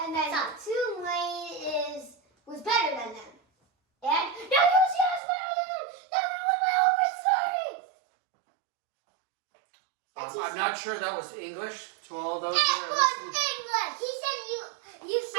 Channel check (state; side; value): drops out; left; at 5.2 s